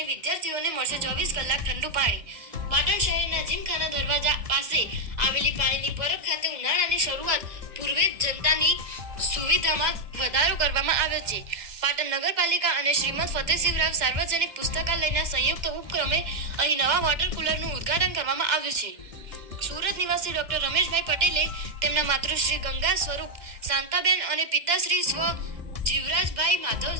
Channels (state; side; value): late; left; 2.1 ms